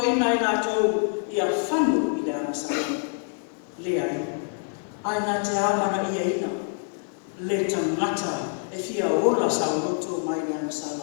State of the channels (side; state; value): right; silent; 57 dB below the other